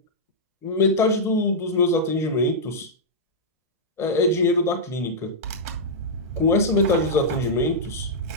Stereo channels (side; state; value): both; normal; correlation -0.09